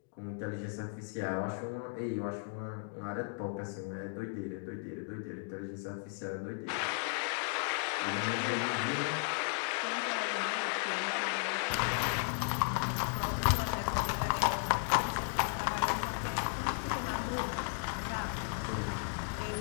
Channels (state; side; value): silent; right; 54 dB below the other